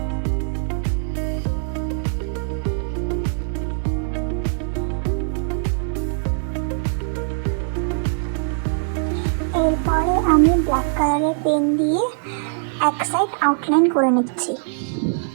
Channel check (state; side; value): silent; left; digital silence